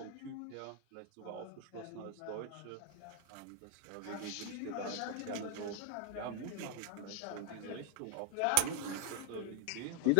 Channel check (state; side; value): different; both; correlation 0.00